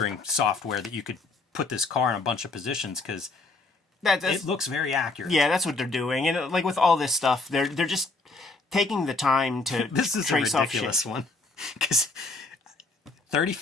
software that you could put this car in a bunch of positions, because it looks very accurate. Yeah, that's what they're doing. And like with all this stuff, they're just taking the time to this is trace a ridiculous off one. Because 30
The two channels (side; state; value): right; quieter; 3.5 dB